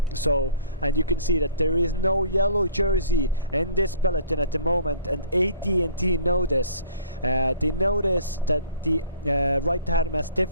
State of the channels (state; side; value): inverted; both; correlation -0.52